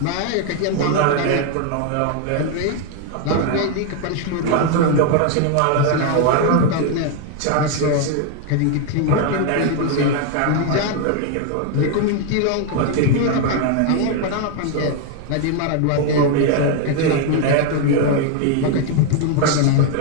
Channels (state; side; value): different; both; correlation 0.01